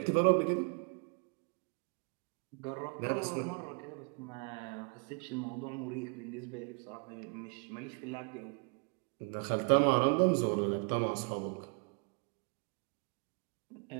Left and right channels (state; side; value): quieter; left; 37.7 dB